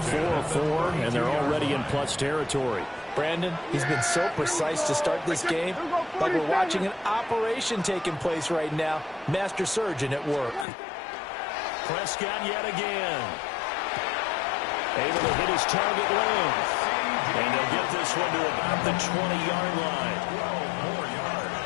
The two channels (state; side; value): drops out; right; at 10.7 s